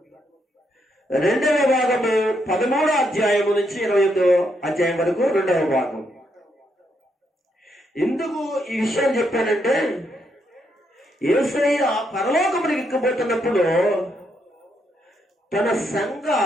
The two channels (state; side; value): normal; both; correlation 0.77